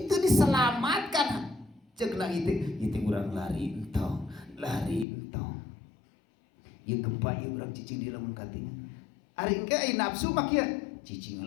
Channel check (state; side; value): drops out; right; at 5.1 s